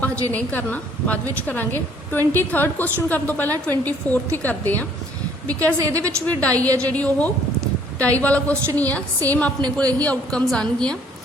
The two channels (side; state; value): both; normal; correlation 0.61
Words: हजे नहीं करना, बाद विच करांगे। 23rd क्वेश्चन करने तो पहला 24th ही करते हैं, बिकॉज ये भी डाई है जी, डाई वाला क्वेश्चन ही है, सेम अपने को यही आउटकम्स आनगियां।